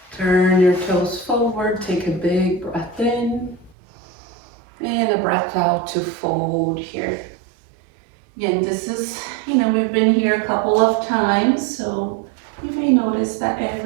Turn your toes forward, take a big breath in, and a breath out to fold here. Again, this is, we've been here a couple of times, so you may notice that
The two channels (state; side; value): drops out; left; at 3.8 s